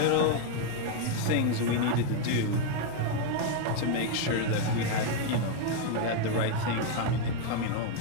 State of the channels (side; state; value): both; different; correlation 0.01